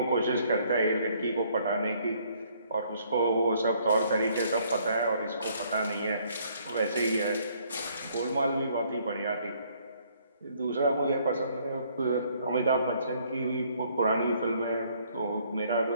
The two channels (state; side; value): inverted; both; correlation -0.65